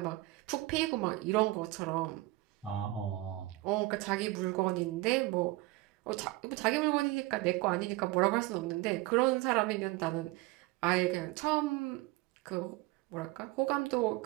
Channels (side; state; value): left; quieter; 19.4 dB